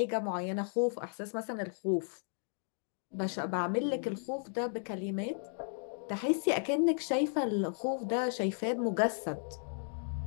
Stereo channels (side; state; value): right; silent; digital silence